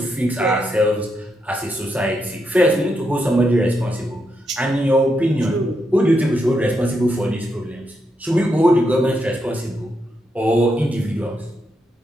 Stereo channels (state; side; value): normal; both; correlation 0.82